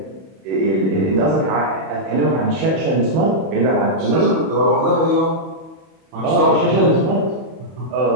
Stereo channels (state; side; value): late; left; 31 ms